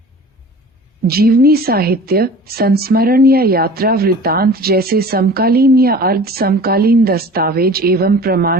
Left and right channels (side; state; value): both; normal; correlation 0.42